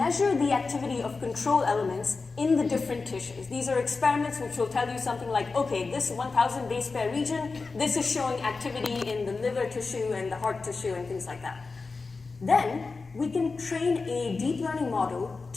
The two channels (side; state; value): right; quieter; 4.1 dB